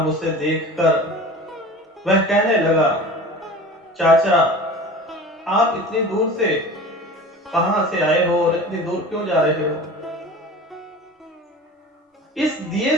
उसे देखकर वह कहने लगा, चाचा, आप इतनी दूर से कहां से आए हो और इतनी दूर क्यों जा रहे हो? इस दिए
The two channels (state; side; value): normal; both; correlation 0.37